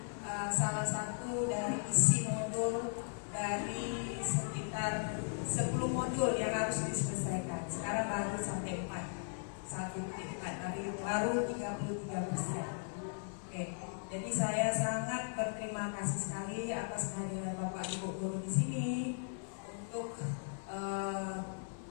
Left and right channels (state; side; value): silent; right; 53 dB below the other